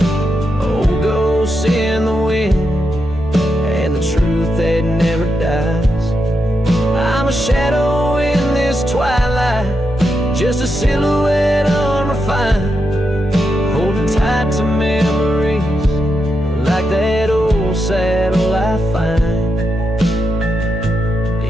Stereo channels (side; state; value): both; normal; correlation 0.85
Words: Old ghosts in the wind and the truth that never dies. I'm a shadow in this twilight, just a silhouette unrefined, holding tight to memories like that old saddle I find.